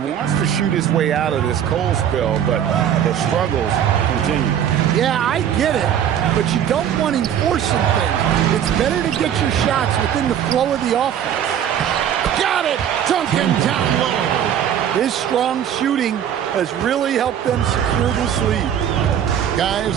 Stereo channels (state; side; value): quieter; left; 9.6 dB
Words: to shoot his way out of this cold spell, but the struggles continue. Yeah, I get it, but you don't want him forcing things. It's better to get your shots within the flow of the offense. Got it! Duncan down low. His strong shooting has really helped them secure this lead.